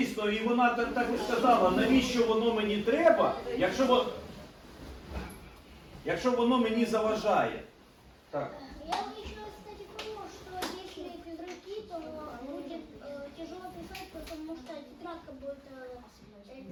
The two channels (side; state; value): both; identical; correlation 1.00